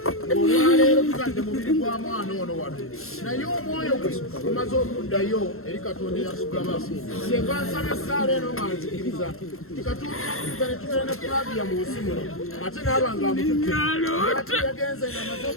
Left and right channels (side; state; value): right; late; 0.62 ms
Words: ng'olwaleero tutadde mubiri gwa mwana ono wano naye omwoyo gwe gumaze okuddayo eri Katonda eyatugaba singa nsaba essaala eno nga nzikiriza ti Katonda ne tubeera ne Flavia mu nsi muno ate naaba ng'amututte yagenze ng'amaze